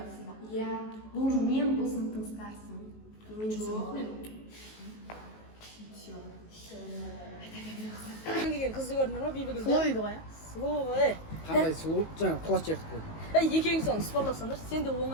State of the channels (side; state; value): right; late; 19 ms